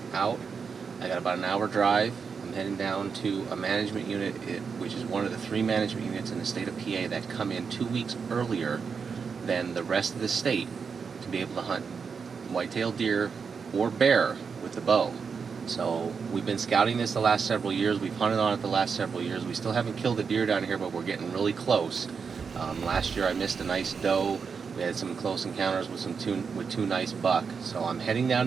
out. I got about an hour drive. I'm heading down to a management unit, which is one of the 3 management units in the state of PA that come in 2 weeks earlier than the rest of the state to be able to hunt white-tailed deer or bear with the bow. So we've been scouting this the last several years. We've hunted on it the last several years. We still haven't killed a deer down here, but we're getting really close. Last year I missed a nice doe. We had some close encounters with two nice buck. So I'm heading down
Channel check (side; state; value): left; quieter; 5.8 dB